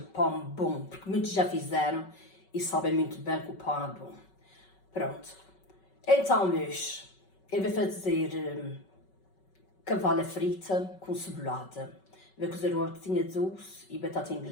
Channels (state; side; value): late; right; 5.3 ms